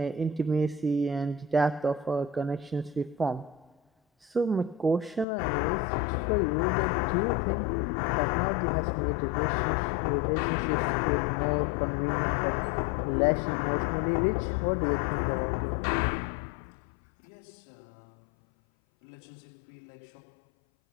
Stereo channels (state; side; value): drops out; right; at 5.2 s